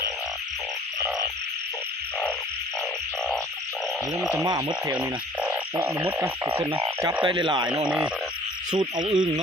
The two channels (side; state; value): both; normal; correlation 0.52